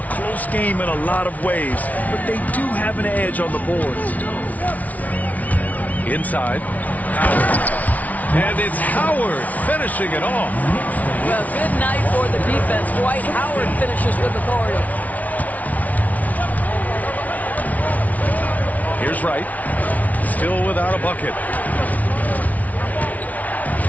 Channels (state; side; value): late; right; 0.072 ms